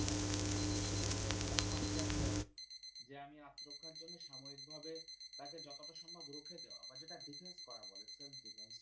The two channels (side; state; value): both; identical; correlation 1.00